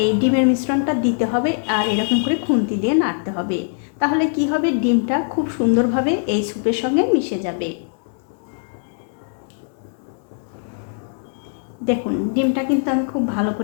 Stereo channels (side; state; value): right; silent; 65 dB below the other